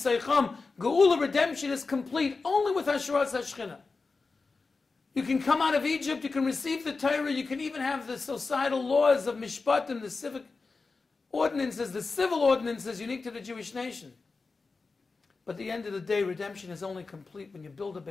Geula, redemption is complete only with Hasharas HaShechina. You can come out of Egypt, you can receive the Torah, you can even have the societal laws of Mishpatim, the civic ordinances, the civil ordinances unique to the Jewish nation. But at the end of the day, redemption is only complete when you build a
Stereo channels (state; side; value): quieter; right; 4.1 dB